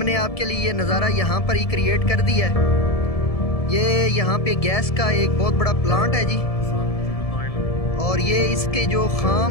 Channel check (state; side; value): late; right; 1.7 ms